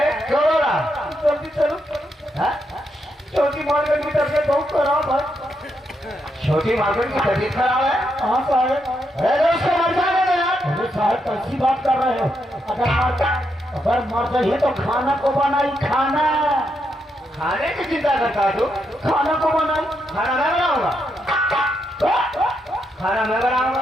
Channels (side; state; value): both; normal; correlation 0.81